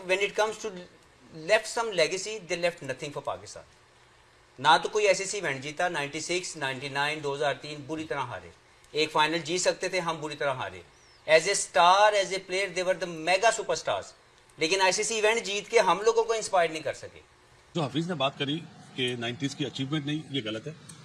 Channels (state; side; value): identical; both; correlation 1.00